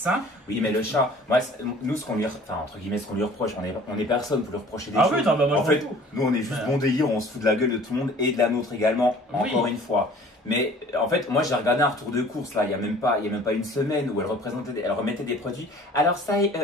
Oui, mais le chat, moi, nous, ce qu'on lui, entre guillemets, ce qu'on lui reproche, on est personne pour lui reprocher des choses. Oui, non, bah, moi, en fait, nous, on est juste bon délire, on se fout de la gueule de tout le monde et de la nôtre également, encore une fois. Mais en fait, moi j'ai regardé un retour de course là, il y a même pas une semaine où elle remettait des produits. Alors ça,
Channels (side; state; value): both; normal; correlation 0.49